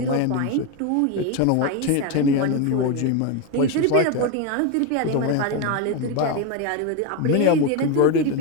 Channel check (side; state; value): both; different; correlation 0.02